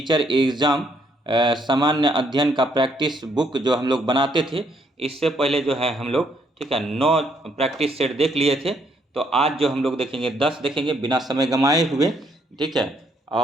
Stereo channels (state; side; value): normal; both; correlation 0.70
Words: एग्ज़ाम सामान्य अध्ययन का प्रैक्टिस बुक जो हम लोग बनाते थे, इससे पहले जो है हम लोग ठीक है 9 प्रैक्टिस सेट देख लिए थे। तो आज जो हम लोग देखेंगे 10 देखेंगे बिना समय गंवाए हुए, ठीक है।